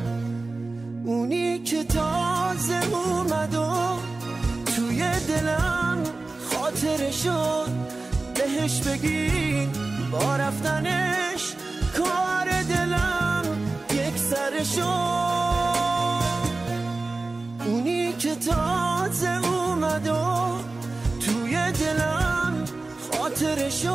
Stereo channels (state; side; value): quieter; left; 3.4 dB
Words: اونی که تازه اومد و توی دلم خاطره شد، بهش بگین با رفتنش کار دلم یک سر شد. اونی که تازه اومد و توی دلم خاطره